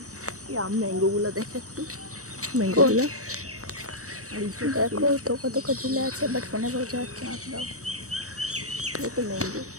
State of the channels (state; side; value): late; left; 0.65 ms